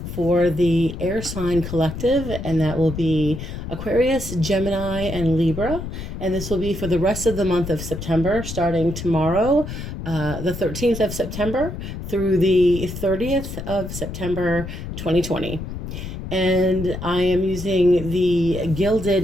for the air sign collective, and that will be Aquarius, Gemini, and Libra, and this will be for the rest of the month of September, starting tomorrow, the 13th of September, through the 30th of September 2020. And I am using the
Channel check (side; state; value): left; noise; rumble, 8 dB below the sound